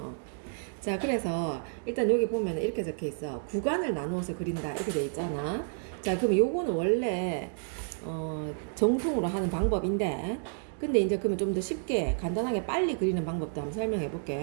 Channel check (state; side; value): silent; left; digital silence